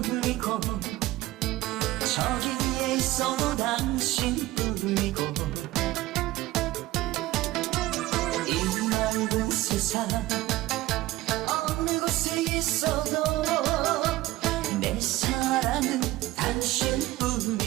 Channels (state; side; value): quieter; left; 17.3 dB